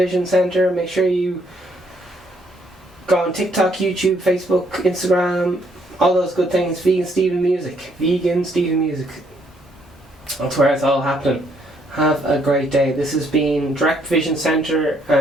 centre. Make sure you go on TikTok, YouTube, Facebook, Instagram, all those good things. Vegan Steven Music. Vegan Steven Music. That's where it's all happening. Have a great day. This has been Direct Provision Centre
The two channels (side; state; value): both; normal; correlation 0.69